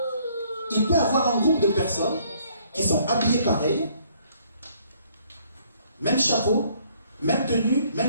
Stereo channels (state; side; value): inverted; both; correlation -0.64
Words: il peut y avoir un groupe de personnes qui sont habillées pareil, même chapeau, même tenue,